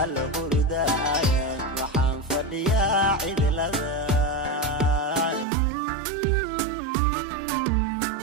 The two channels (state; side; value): drops out; left; at 5.5 s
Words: alla hurdaan waxaan fadhiyaa cidlada